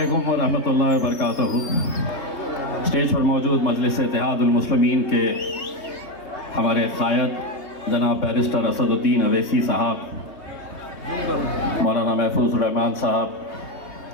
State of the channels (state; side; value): late; right; 3.2 ms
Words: व रहमतुल्लाहि व बरकातहू। स्टेज पर मौजूद मजलिस इत्तेहादुल मुस्लिमीन के हमारे क़ायद जनाब बैरिस्टर असदुद्दीन अवैसी साहब, मौलाना महफूज़ुर रहमान साहब,